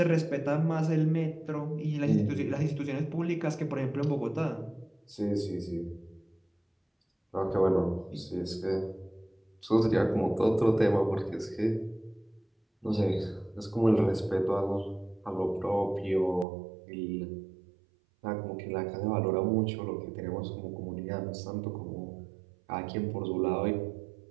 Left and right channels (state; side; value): drops out; left; at 16.4 s